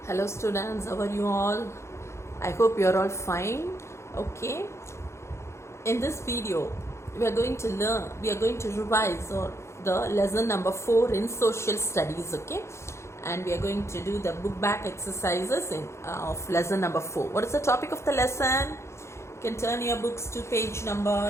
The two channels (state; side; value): late; right; 0.13 ms